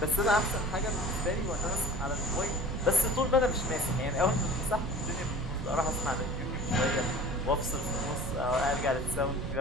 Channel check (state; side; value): noise; right; rumble, 6 dB below the sound